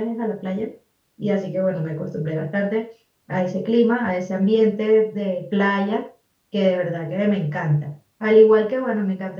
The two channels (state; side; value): identical; both; correlation 1.00